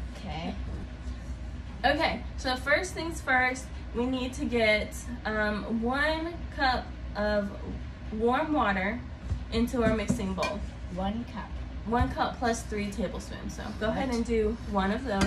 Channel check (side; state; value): both; identical; correlation 1.00